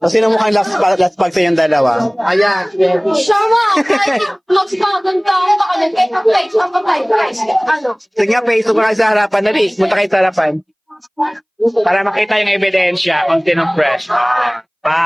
So, sino mukhang last pag sa yung dalawa? Ayan. Sama! Kahit magpaganda ako baka lang kahit mag-like, guys. Ano? Sige nga, Facebook ka sa harapan. Dali, punta kayo sa harapan. Para makita yung ebidensya kung sinong fresh.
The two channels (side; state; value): both; identical; correlation 1.00